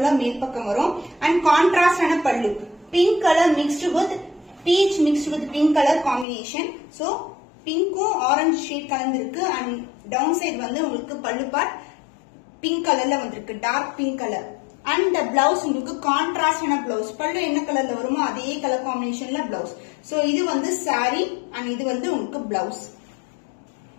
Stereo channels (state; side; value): drops out; right; at 6.2 s